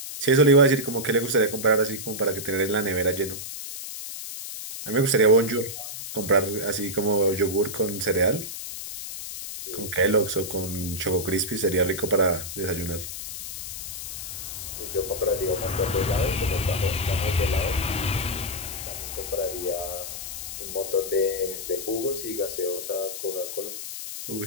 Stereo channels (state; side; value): noise; left; hiss, 8 dB below the sound